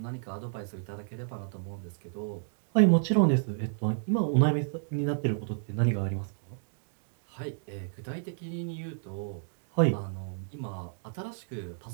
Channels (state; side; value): silent; left; digital silence